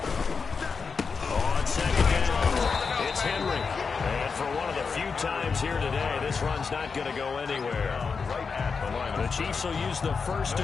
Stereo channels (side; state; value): right; quieter; 5.2 dB